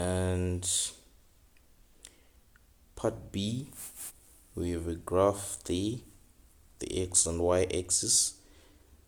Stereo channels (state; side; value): identical; both; correlation 1.00